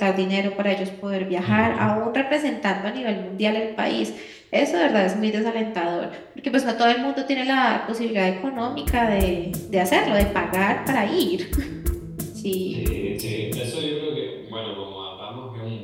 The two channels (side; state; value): both; identical; correlation 1.00